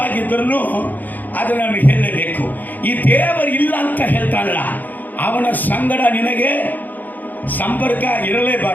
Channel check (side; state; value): right; late; 0.084 ms